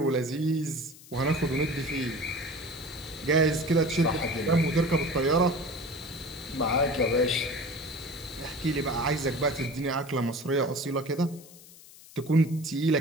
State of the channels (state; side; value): noise; left; hiss, 20 dB below the sound